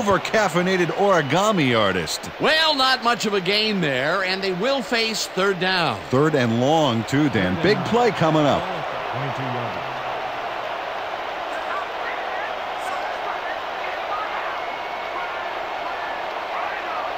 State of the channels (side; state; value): left; noise; rumble, 26 dB below the sound